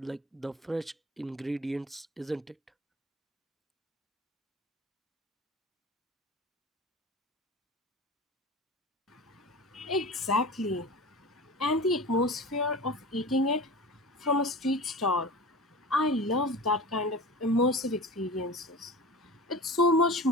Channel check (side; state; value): both; normal; correlation 0.34